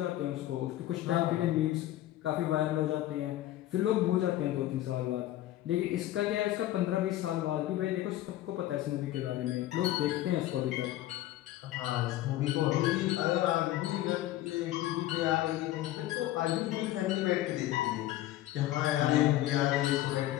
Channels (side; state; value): right; quieter; 14.6 dB